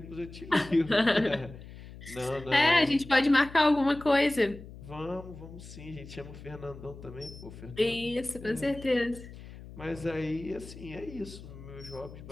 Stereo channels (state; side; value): noise; left; hum, 15 dB below the sound